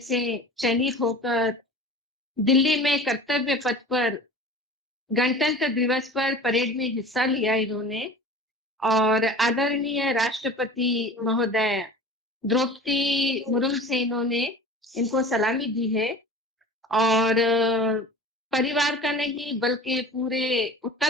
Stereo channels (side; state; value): both; normal; correlation 0.39